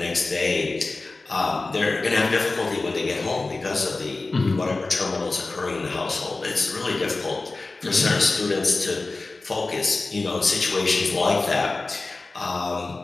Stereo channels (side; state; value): right; quieter; 3.4 dB